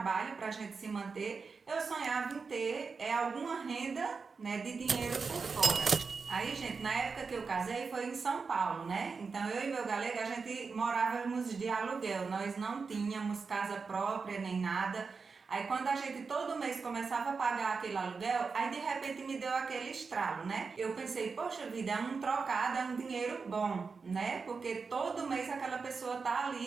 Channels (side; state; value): left; quieter; 4.9 dB